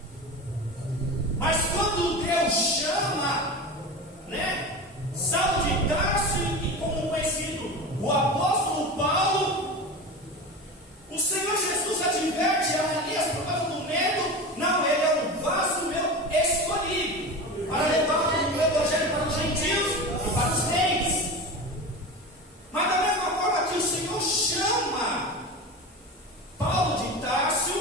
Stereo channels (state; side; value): normal; both; correlation 0.28